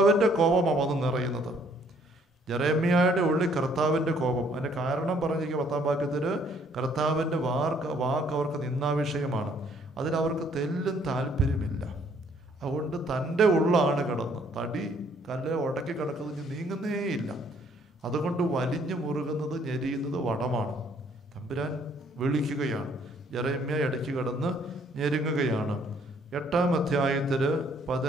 കോപമാണ് വന്ന് നിറയുന്നത്. ജെറമ്യയുടെ ഉള്ളിൽ കർത്താവിൻ്റെ കോപം. അതിൻ്റെ കാരണം പറഞ്ഞിരിക്കുക 10-ാം വാക്യത്തിൽ, കർത്താവിൻ്റെ വാക്ക് അവർക്ക് നിന്ദാവിഷയമാണ്, അതിലവർക്ക് തെല്ലും താല്പര്യമില്ല. അതുകൊണ്ട് തൻ്റെ ഉള്ളാണ് കിടന്ന് തടി കല്ല് ഉടക്കി കിടക്കുന്നത് നീങ്ങുന്നേയില്ല. അതുകൊണ്ട് വലിഞ്ഞു മുറുകുന്നത്, ഞെരിയുന്നത് വടമാണ്. തമ്പുരാൻ വിളിക്കുകയാണ്. ജെറമ്യ ഇടയ്ക്ക് കിടന്ന് ഞെരുങ്ങുകയാണ്. 8-ാം അധ്യായത്തിൽ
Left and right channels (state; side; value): normal; both; correlation 0.64